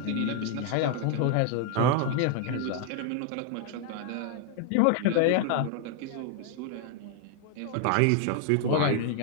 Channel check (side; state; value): both; different; correlation 0.00